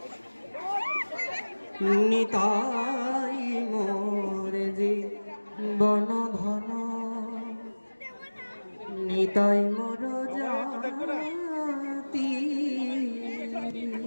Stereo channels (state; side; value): inverted; both; correlation -1.00